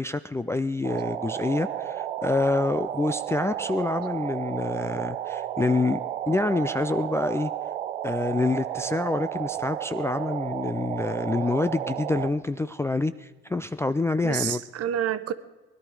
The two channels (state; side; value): normal; both; correlation 0.70